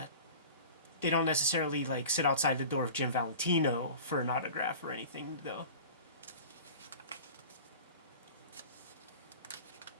don't necessarily like sit outside the door of Jim Valentino for an autograph or anything, though.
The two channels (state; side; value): inverted; both; correlation -0.38